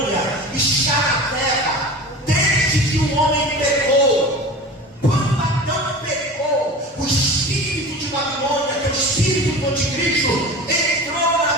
está na terra desde que o homem pecou. Quando Adão pecou, o espírito de Babilônia, que é o espírito do anticristo, entrou na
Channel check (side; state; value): both; normal; correlation 0.34